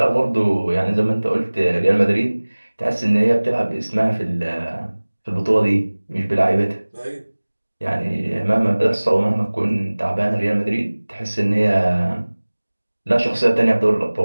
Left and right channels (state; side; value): inverted; both; correlation -1.00